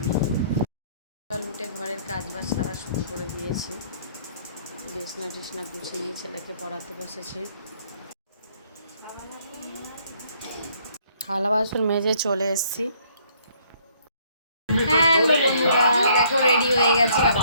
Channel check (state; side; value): inverted; both; correlation -0.64